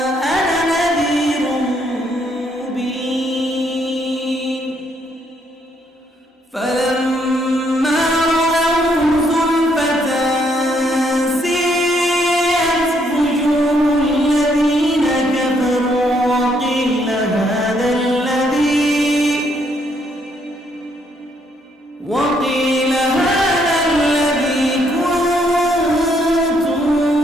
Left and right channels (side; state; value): both; normal; correlation 0.71